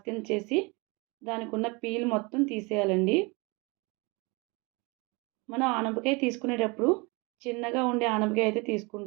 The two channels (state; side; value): quieter; left; 27.9 dB